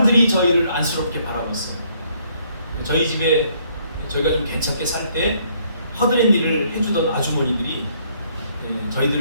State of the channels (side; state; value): both; inverted; correlation -0.67